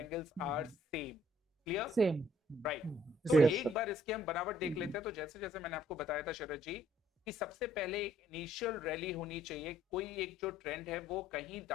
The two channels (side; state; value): both; normal; correlation 0.63